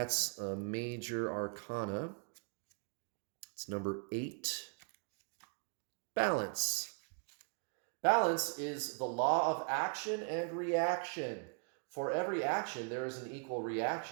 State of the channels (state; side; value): quieter; left; 39.7 dB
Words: a major arcana. It's number 8. Balance. Balance is the law of action and reaction. For every action, there is an equal